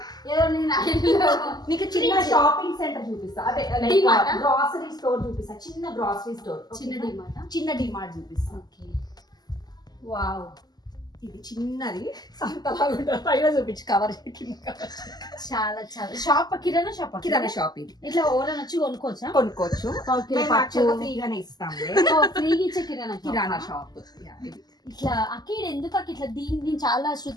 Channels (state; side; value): late; right; 0.20 ms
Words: ఏదో నేను నీకు చిన్న షాపింగ్ సెంటర్ చూపిస్తా, అదే గ్రాసరీ స్టోర్ చూపిస్తా, చిన్న గ్రాసరీ స్టోర్, చిన్న డిమార్ట్ చూపిస్తా. Okay, wow. ఇది చిన్నది పైన చూపించి కవర్ చాలా చాలా షాప్, కిరాణా షాప్. కిరాణా షాప్ ఇది. ఇట్లా ఎవరైనా వచ్చి కొనుక్కోవచ్చా? కొనుక్కోవచ్చు, ఫ్రీగానే ఇస్తాము. ఫ్రీగా ఇచ్చే కిరాణా షాప్ ఇట్లా అక్కడ ఎందుకు అక్క ఇట్లా దీన్ని నేను చాలా